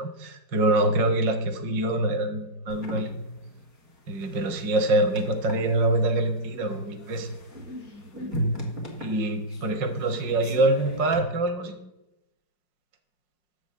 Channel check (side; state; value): left; late; 5.5 ms